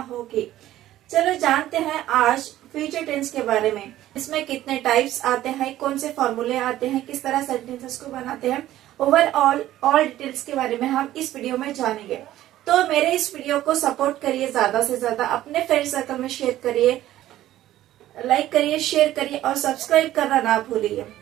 होगी। चलो जानते हैं आज फ्यूचर टेंस के बारे में। इसमें कितने टाइप्स आते हैं, कौन से फॉर्मूले आते हैं, किस तरह सेंटेंसेस को बनाते हैं, ओवरऑल ऑल डिटेल्स के बारे में हम इस वीडियो में जानेंगे। तो मेरे इस वीडियो को सपोर्ट करिए, ज्यादा से ज्यादा अपने फ्रेंड सर्कल में शेयर करिए, लाइक करिए, शेयर करिए और सब्सक्राइब करना ना भूलिए।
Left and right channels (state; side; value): quieter; left; 13.9 dB